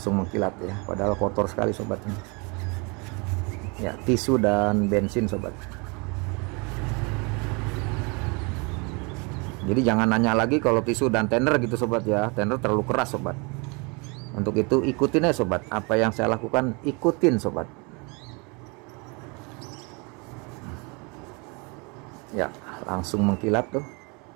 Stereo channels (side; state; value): left; quieter; 30.7 dB